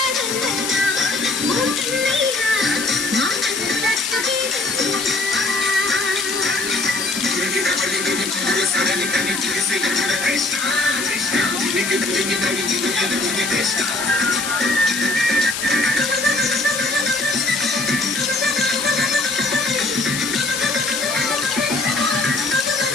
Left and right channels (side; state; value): left; noise; hiss, 4 dB below the sound